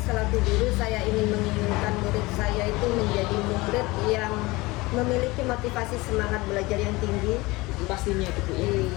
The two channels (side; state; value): right; quieter; 22.1 dB